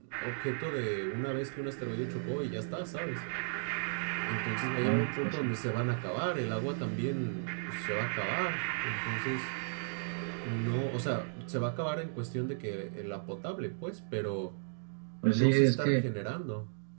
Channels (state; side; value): silent; left; digital silence